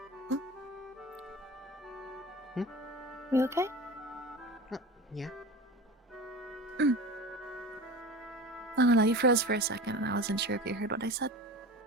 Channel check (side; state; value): both; normal; correlation 0.32